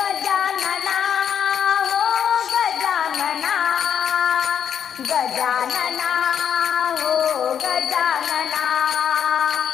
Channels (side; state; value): right; quieter; 8.4 dB